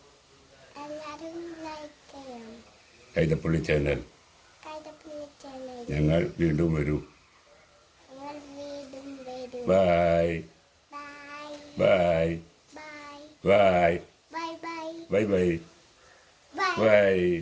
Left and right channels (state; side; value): identical; both; correlation 1.00